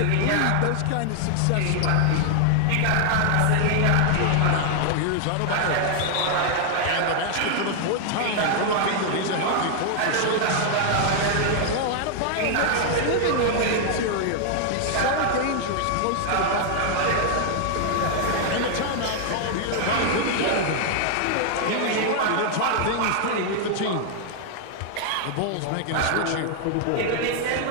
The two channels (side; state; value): both; different; correlation 0.00